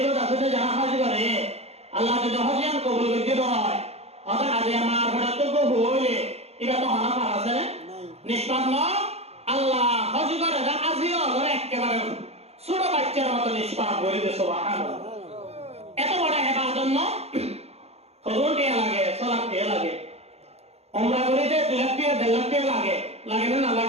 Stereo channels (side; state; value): left; late; 0.30 ms